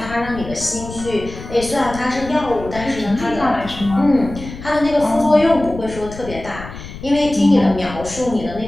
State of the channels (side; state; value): left; noise; rumble, 12 dB below the sound